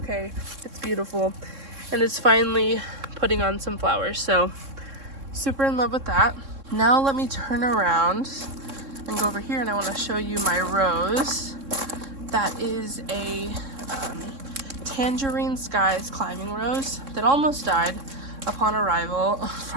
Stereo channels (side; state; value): left; late; 3.6 ms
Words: It's beautiful. And it's finally putting on some flowers. So super in love with that. Now let me turn around and go over here, and I want to show you my rose. That is a Tangerine Skies climbing rose that almost died upon arrival